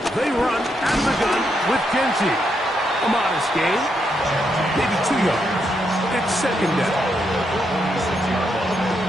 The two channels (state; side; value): normal; both; correlation 0.79